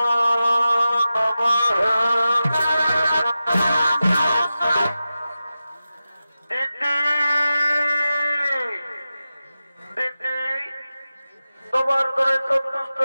তোমার ধরে সন্তুষ্ট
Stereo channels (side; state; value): both; inverted; correlation -0.93